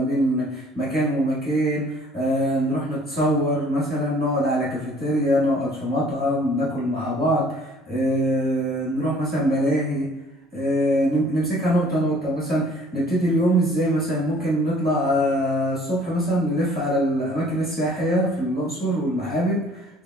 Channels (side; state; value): both; normal; correlation 0.55